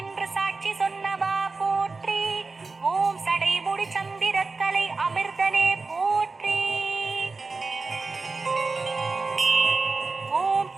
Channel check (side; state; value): left; quieter; 4.0 dB